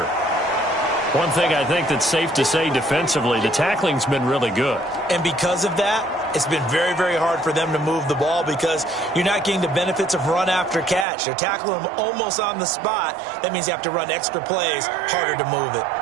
One thing I think that's safe to say defensively, the tackling's been really good. And because of that, it's been very, very hard for them to move the ball because you're not getting the benefits of run after catch. They're tackling them almost on the spot. That means you have to run extra plays, harder to move it.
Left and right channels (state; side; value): drops out; left; at 11.1 s